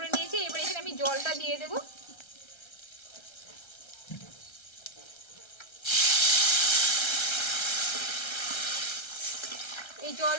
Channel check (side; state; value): right; late; 1.3 ms